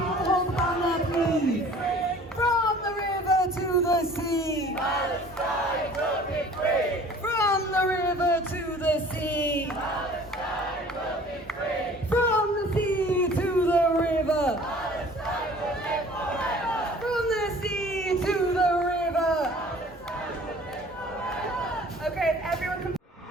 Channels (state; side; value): normal; both; correlation 0.49